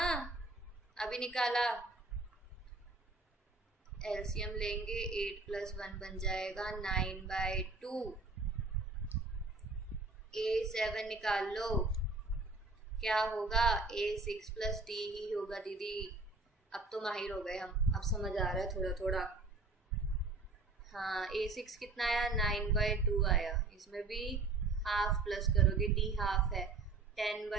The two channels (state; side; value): quieter; left; 3.6 dB